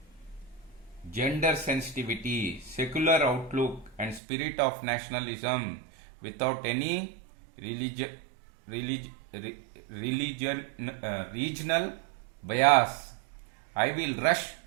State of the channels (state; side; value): drops out; left; at 4.2 s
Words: gender sensitivity, secular outlook and spirit of nationalism without any regional bias. I will rush